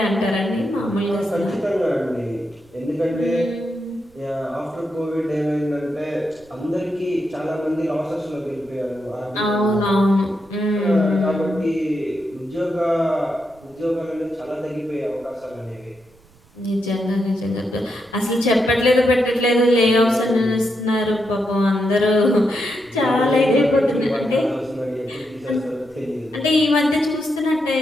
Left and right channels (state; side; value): noise; right; rumble, 30 dB below the sound